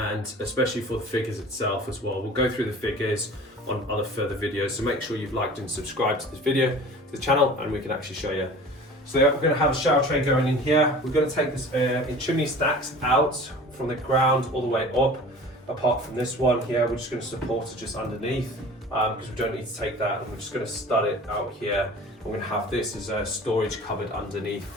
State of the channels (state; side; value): normal; both; correlation 0.42